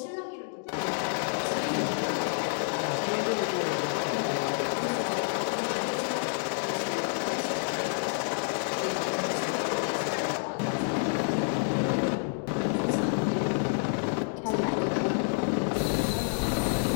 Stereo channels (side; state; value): right; silent; 59 dB below the other